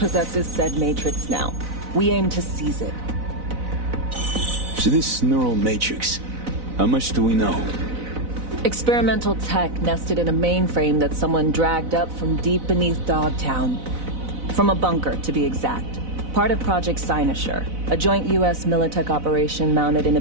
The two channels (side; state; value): left; late; 4.0 ms